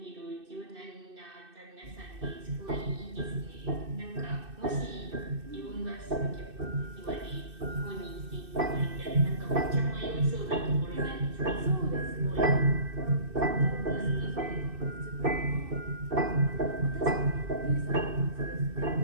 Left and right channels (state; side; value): late; left; 2.6 ms